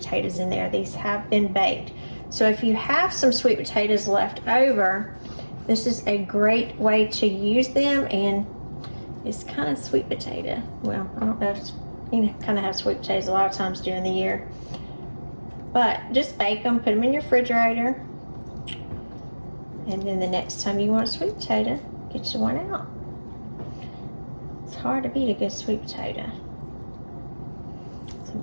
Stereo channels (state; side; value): inverted; both; correlation -1.00